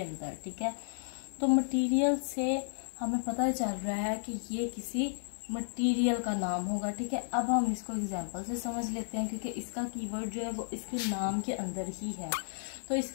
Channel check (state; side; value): silent; right; 56 dB below the other